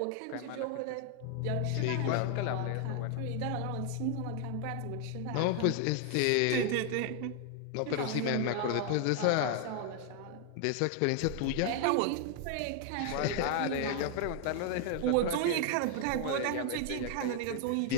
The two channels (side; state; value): both; different; correlation 0.00